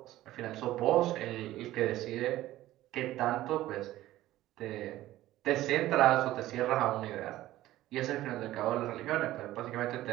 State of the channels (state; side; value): quieter; left; 15.3 dB